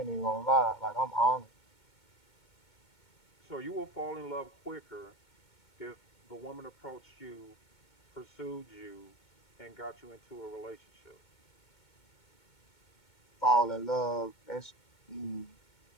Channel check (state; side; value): late; right; 2.2 ms